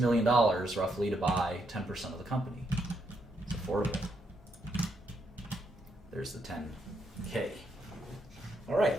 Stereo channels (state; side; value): normal; both; correlation 0.77